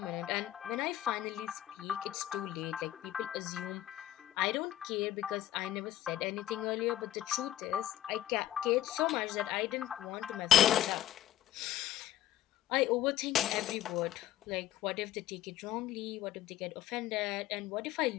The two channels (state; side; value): quieter; right; 13.0 dB